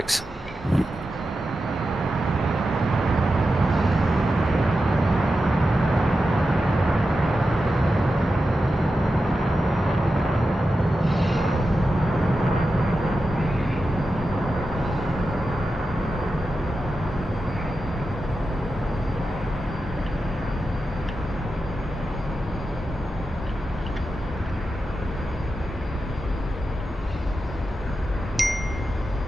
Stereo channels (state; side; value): normal; both; correlation 0.90